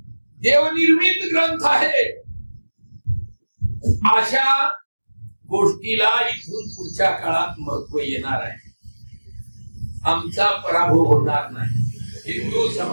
देवनिर्मित ग्रंथ आहे, अशा गोष्टीला इथून पुढच्या काळात महत्व येणार आहे. आमचा पराभव होणार नाही. हिंदू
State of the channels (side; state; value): both; inverted; correlation -1.00